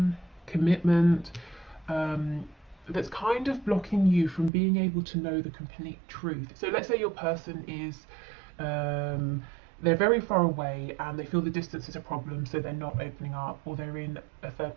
commitment, that's kind of blocking you from being able to know the complete truth? So let's say your person is they're very far away and they feel the distance is a problem, so they're not opening up, or they're in a third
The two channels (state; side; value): drops out; left; at 4.5 s